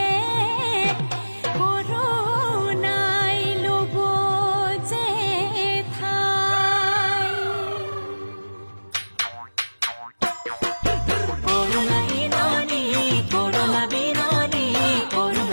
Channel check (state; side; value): inverted; both; correlation -1.00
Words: কৰোণাই ল'ব যে ঠাই কৰোণা বিননি কৰোণা বিননি